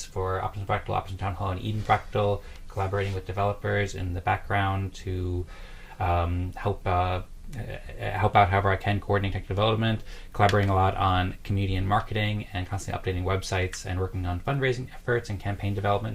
for Optimism Fractal, Optimism Town Hall, and Eden Fractal, collaborating with developers in the background to help out however I can, coordinate tech development, collaborating a lot on community and marketing, and constantly updating websites, and working on fundraising efforts and campaign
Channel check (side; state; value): both; identical; correlation 1.00